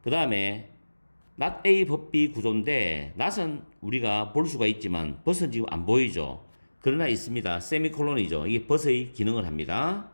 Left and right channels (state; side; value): inverted; both; correlation -1.00